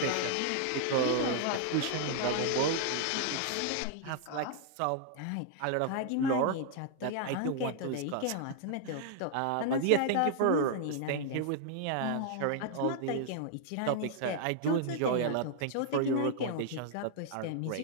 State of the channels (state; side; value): different; both; correlation 0.00